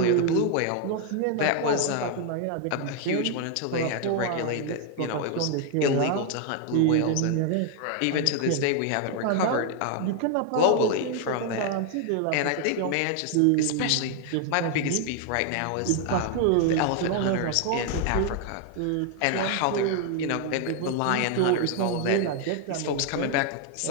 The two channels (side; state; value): both; different; correlation 0.01